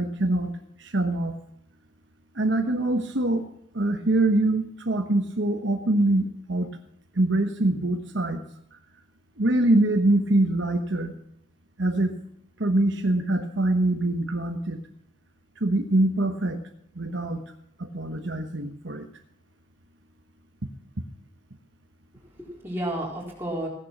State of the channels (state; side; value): normal; both; correlation 0.72